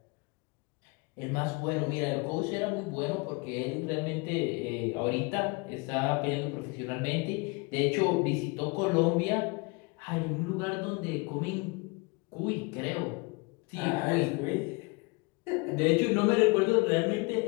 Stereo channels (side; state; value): right; quieter; 28.6 dB